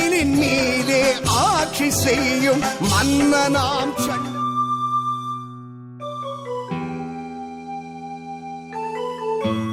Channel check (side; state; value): both; identical; correlation 1.00